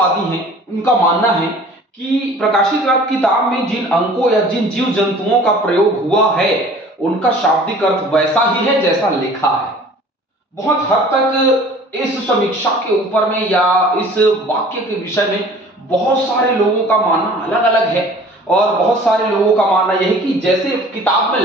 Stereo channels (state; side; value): normal; both; correlation 0.48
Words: हैं उनका मानना है कि प्रकाशित वाक्य किताब में जिन अंकों या जिन जीव जंतुओं का प्रयोग हुआ है उनका शाब्दिक अर्थ वैसा ही है जैसा लिखा है। बहुत हद तक इस समीक्षा के ऊपर में या इस वाक्य के विषय में बहुत सारे लोगों का मानना अलग अलग है और बहुत सारे लोगों का मानना यह है कि जैसे किताब में